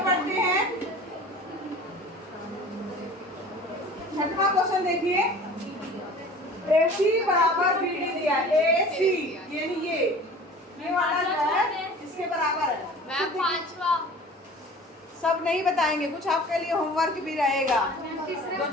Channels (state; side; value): normal; both; correlation 0.43